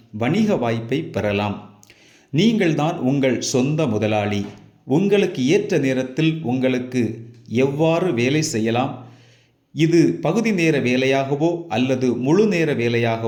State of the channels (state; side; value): identical; both; correlation 1.00